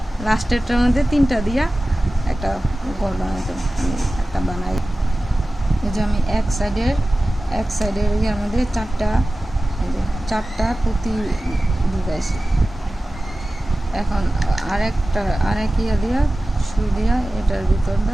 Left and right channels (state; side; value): normal; both; correlation 0.96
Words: লাস্টেরটার মধ্যে 3টা দিয়া একটা গোল বানাইতে হবে। আমি একটা বানাই, এই যে আমি এক সাইডের ইয়ার মধ্যে 4টা পুঁতি ঢুকাইছি। এখন আরেক ইয়া দিয়া সুই দিয়া এটার